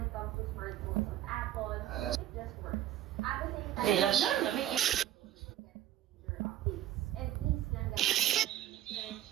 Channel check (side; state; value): left; quieter; 12.5 dB